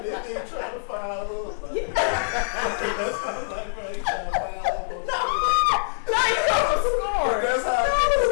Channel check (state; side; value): silent; right; 62 dB below the other